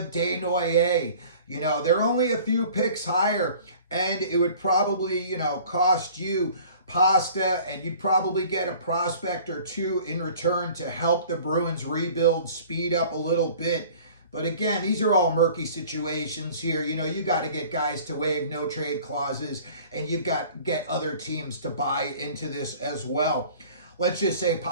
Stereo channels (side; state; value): both; inverted; correlation -0.48